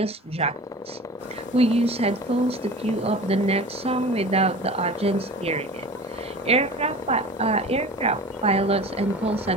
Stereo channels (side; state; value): both; normal; correlation 0.37